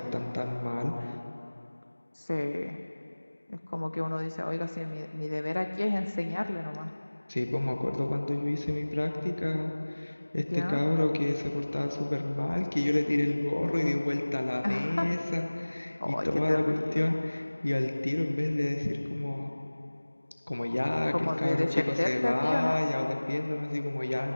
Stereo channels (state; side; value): inverted; both; correlation -1.00